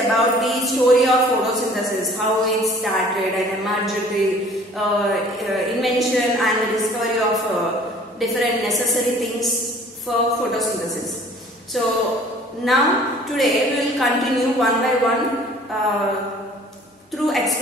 the story of photosynthesis, how it started and emerged, the invention and the discovery of different necessary things for photosynthesis. So now today we will continue one by one through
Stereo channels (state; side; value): normal; both; correlation 0.51